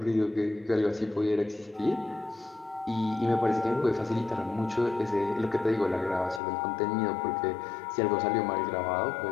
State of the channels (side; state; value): right; drops out; at 6.4 s